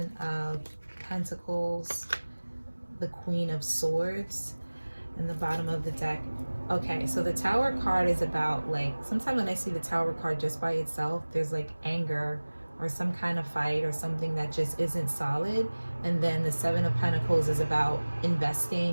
of Pentacles, the Queen of Swords, and the bottom of the deck. Okay, so the Tower card is about, like, sometimes when I see the Tower card just by itself, there's like anger or some kind of fight or something that just isn't solid. And then the Seven of Pentacles is about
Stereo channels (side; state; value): both; inverted; correlation -1.00